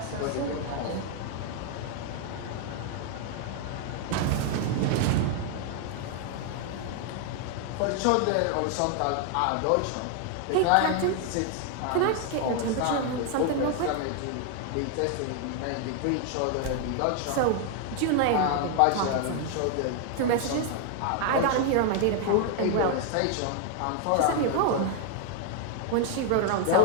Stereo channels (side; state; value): both; different; correlation 0.00